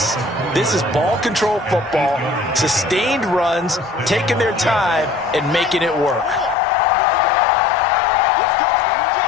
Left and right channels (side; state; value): right; drops out; at 6.6 s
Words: This is ball control football, sustained runs, taking their time and making it work.